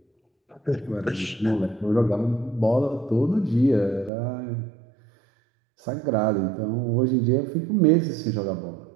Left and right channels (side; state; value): left; drops out; at 4.1 s